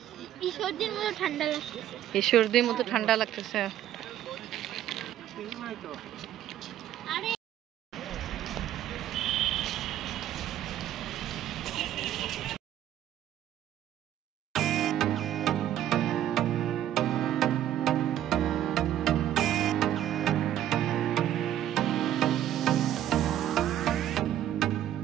ঈশ্বরদীর মতো ঠান্ডা লাগতেছে।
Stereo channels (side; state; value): left; quieter; 11.7 dB